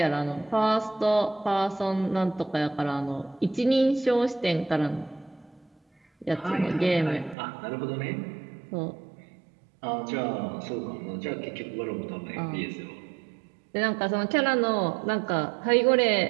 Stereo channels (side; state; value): left; drops out; at 7.4 s